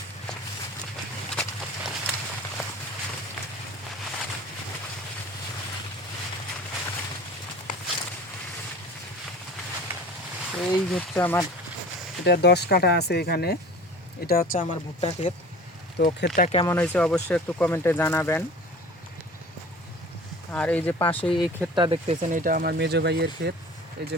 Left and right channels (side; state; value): both; normal; correlation 0.41